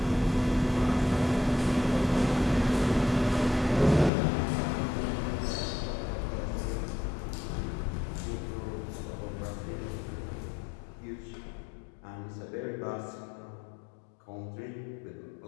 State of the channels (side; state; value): right; drops out; at 4.1 s